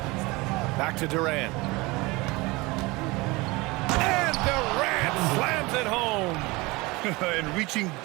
Back to Durant. And Durant slams it home. And reaching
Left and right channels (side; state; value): left; quieter; 23.3 dB